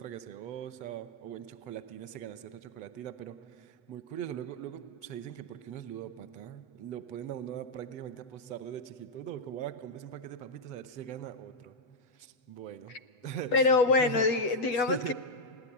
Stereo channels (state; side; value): late; right; 8.1 ms